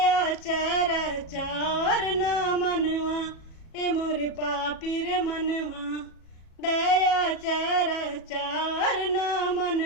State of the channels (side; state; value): right; late; 37 ms